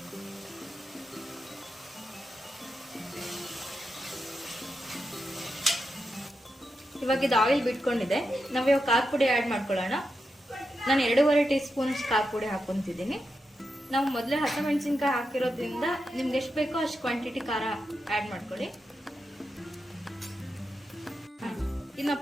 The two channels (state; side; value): normal; both; correlation 0.87